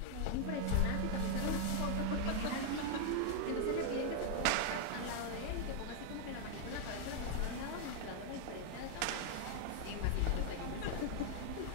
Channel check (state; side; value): different; both; correlation 0.00